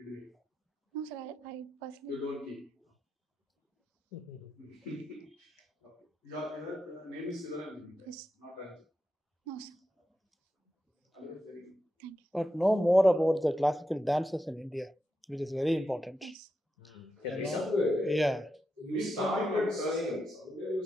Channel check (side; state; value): both; normal; correlation 0.87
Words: No, sir. I personally. You don't keep. Okay. Your name is Siva, Yes. not Ranjini. No, sir. Very Thank you. But know more about the classical dances in India, which is very important. Yes. Yeah. You started saying